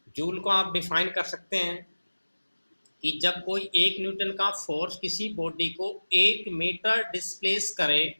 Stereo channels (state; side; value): inverted; both; correlation -1.00